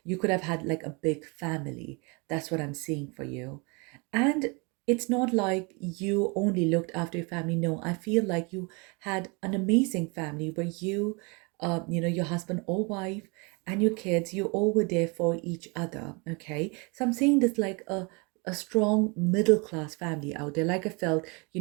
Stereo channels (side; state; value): left; quieter; 30.4 dB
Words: you could have had like a big family. That's what I'm seeing for you. And it's not like you only looked after your family. No, I feel like you had an amazing family where your husband or wife and your kids, you all were there for each other. Okay. So I'm seeing this like a strong middle class family out there. Like I felt,